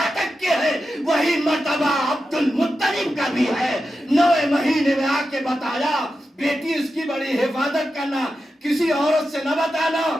تک کے ہے وہی مرتبہ عبد المطلب کا بھی ہے. 9 مہینے میں آ کے بتایا بیٹی اس کی بڑی حفاظت کرنا, کسی عورت سے نہ بتانا.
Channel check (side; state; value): both; normal; correlation 0.90